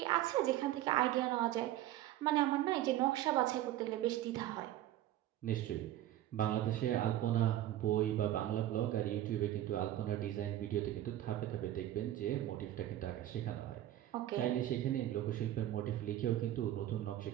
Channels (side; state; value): left; quieter; 13.4 dB